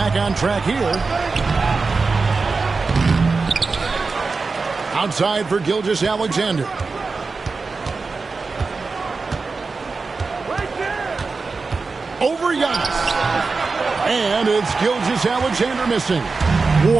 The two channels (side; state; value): left; quieter; 4.2 dB